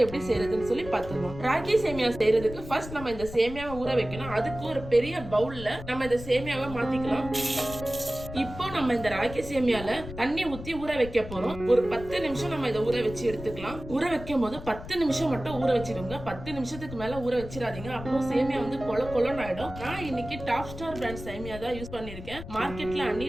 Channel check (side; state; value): left; noise; rumble, 12 dB below the sound